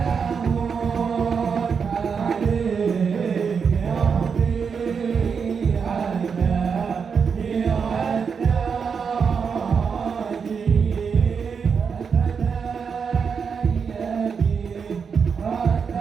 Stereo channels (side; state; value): left; quieter; 6.1 dB